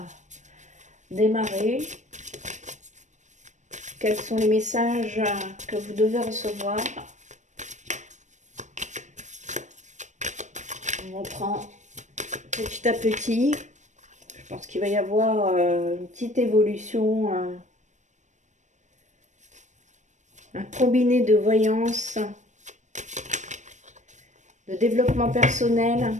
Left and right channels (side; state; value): left; late; 0.35 ms